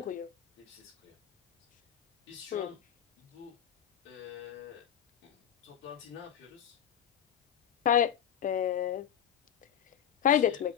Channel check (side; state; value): right; quieter; 9.4 dB